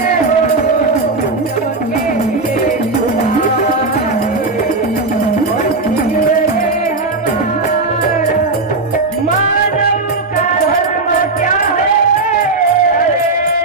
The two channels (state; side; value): quieter; left; 3.5 dB